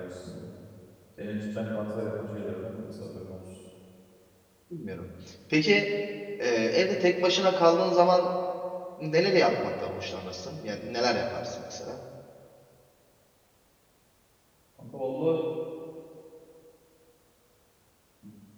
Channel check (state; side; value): identical; both; correlation 1.00